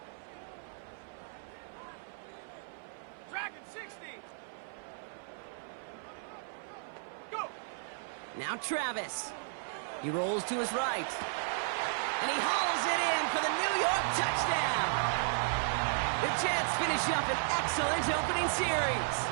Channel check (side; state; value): left; silent; 55 dB below the other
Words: Dragon 60. Go. Now Travis. He rolls to his right. And he hauls it in for the New York touchdown. The Jets finish up an excellent opening series.